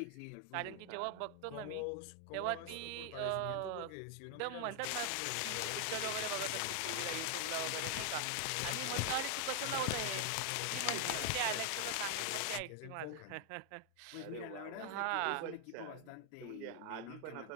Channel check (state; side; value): different; both; correlation 0.00